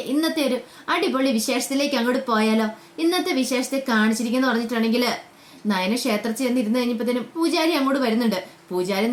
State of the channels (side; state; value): both; identical; correlation 1.00